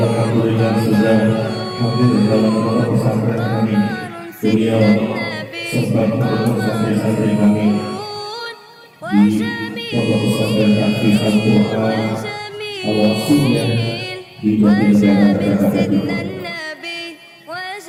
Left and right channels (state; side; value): identical; both; correlation 1.00